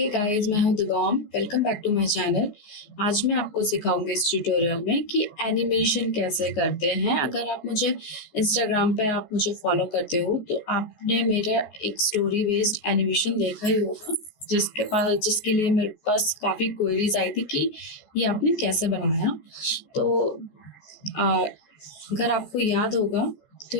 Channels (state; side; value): late; right; 14 ms